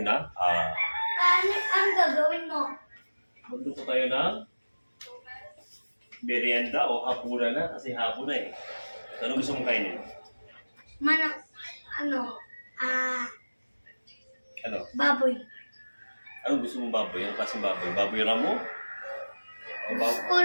Ano gagawin mo? magluto tayo ng merienda o hapunan na kasi hapon na eh. Ano gusto mong kainin? Ano? Baboy. Anong gusto mong baboy? Anong klaseng baboy? Baboy ramo? O Gusto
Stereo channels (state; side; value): inverted; both; correlation -1.00